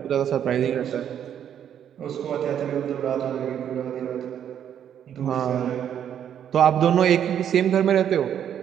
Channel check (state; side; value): quieter; left; 9.4 dB